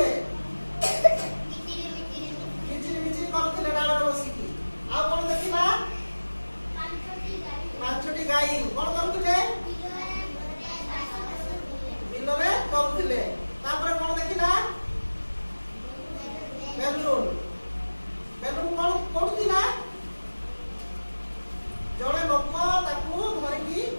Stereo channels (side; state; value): both; inverted; correlation -1.00